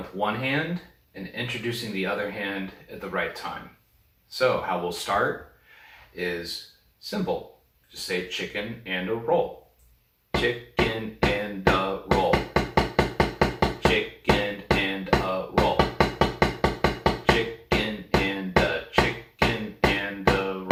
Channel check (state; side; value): identical; both; correlation 1.00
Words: one hand and introducing the other hand at the right time. So how we'll start is simple. Just say chicken and a roll. Chicken and a roll. Chicken and a roll. Chicken and a